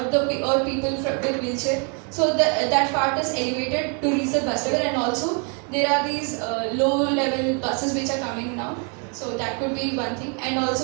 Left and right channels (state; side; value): quieter; left; 36.6 dB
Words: people with wheelchair. So that part is elevated to reach the bus level, and also there are these low level buses which are coming now. So that could be one thing, and